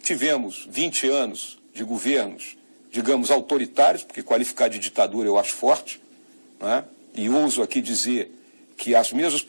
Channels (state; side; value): inverted; both; correlation -1.00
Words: Tivemos 20 anos de governos, digamos, autoritários, porque qualificar de ditadura eu acho forte, né? E ouso aqui dizer que as mesmas